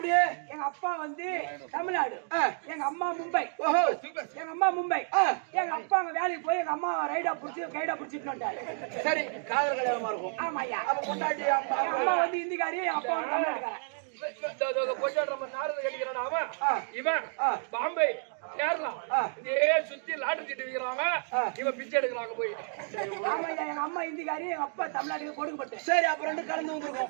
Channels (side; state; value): left; silent; 57 dB below the other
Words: எங்க அப்பா வந்து தமிழ்நாடு எங்க அம்மா மும்பை ஓஹோ எங்க அம்மா மும்பை எங்க அப்பா அங்க வேலைக்கு போய் எங்க அம்மா கைடா புடிச்சிட்டு வந்துட்டாரு சரி காதல் கல்யாணமா இருக்கும் ஆமா ஐயா அப்ப கொண்டாடி அம்மா வந்து இந்திக்காரி அப்பா வந்து தமிழ்நாடுக்காரன் இவன் பாம்பே கேரளா சுத்தி லாட்டரி சீட்டு விக்கிறாங்க இவன் பிச்சை எடுக்கிறாங்க போய் எங்க அம்மா இந்திக்காரி எங்க அப்பா தமிழ்நாட்டுக்கு கொடுக்கப்பட்டு சரி அப்புறம் ரெண்டு கலந்து